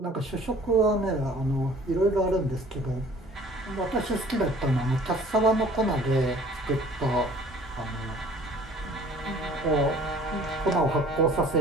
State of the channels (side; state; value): both; normal; correlation 0.51